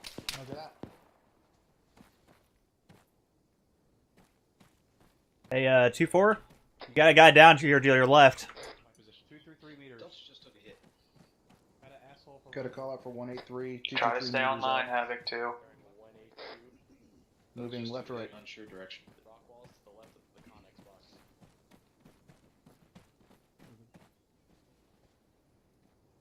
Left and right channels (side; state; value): both; identical; correlation 1.00